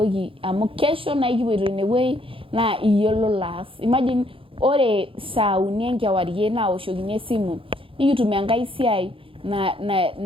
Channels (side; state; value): left; late; 0.26 ms